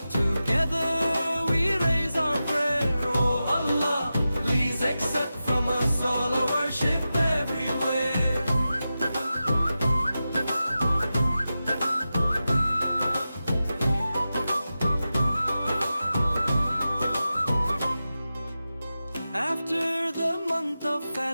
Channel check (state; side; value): inverted; both; correlation -0.92